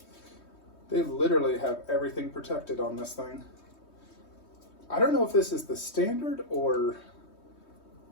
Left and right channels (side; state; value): right; late; 3.2 ms